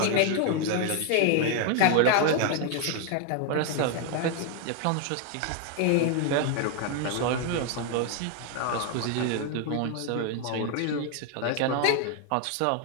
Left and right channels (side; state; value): both; different; correlation 0.00